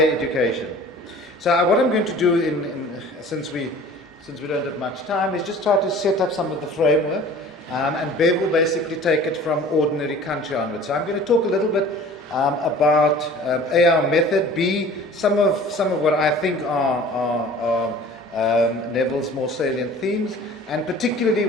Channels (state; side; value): normal; both; correlation 0.46